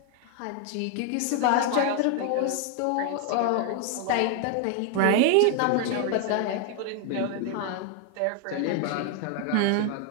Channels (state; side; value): different; both; correlation 0.00